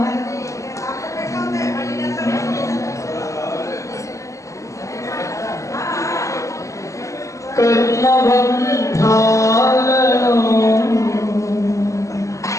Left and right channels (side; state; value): right; late; 0.15 ms